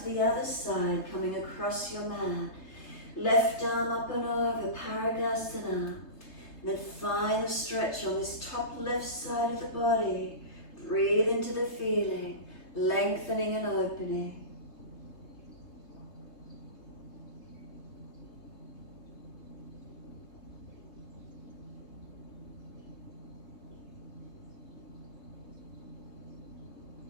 the other side, coming across your mat. Left arm up and over, Paragasana. Then find the stretch on this top left side of the body. Breathe into the feeling, lengthening and opening.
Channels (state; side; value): late; right; 3.3 ms